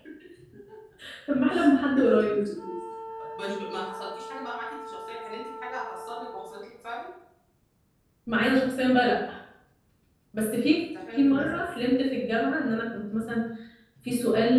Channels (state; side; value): identical; both; correlation 1.00